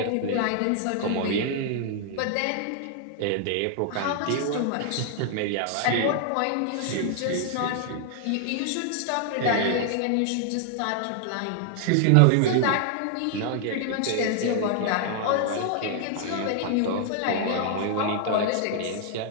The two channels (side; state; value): both; different; correlation 0.00